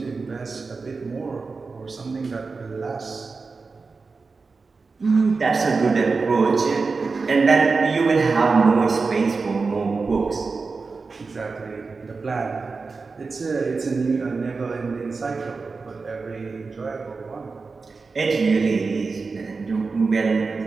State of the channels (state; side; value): quieter; left; 4.3 dB